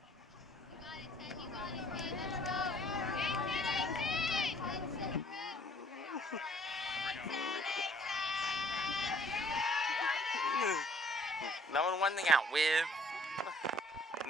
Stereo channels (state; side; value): normal; both; correlation 0.59